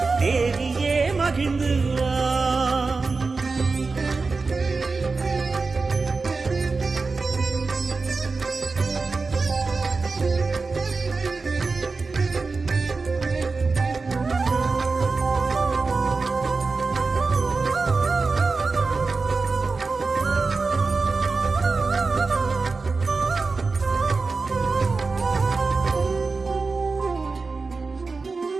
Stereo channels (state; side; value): quieter; left; 4.1 dB